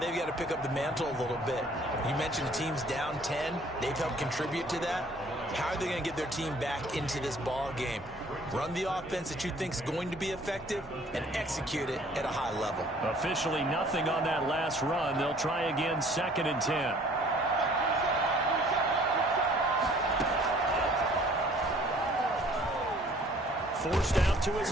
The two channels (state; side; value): normal; both; correlation 0.56